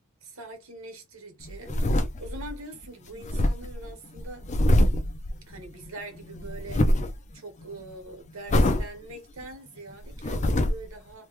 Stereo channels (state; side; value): normal; both; correlation 0.85